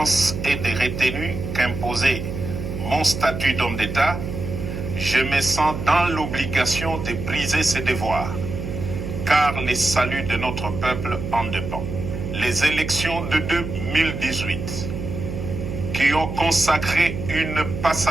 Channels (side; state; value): right; noise; hum, 6 dB below the sound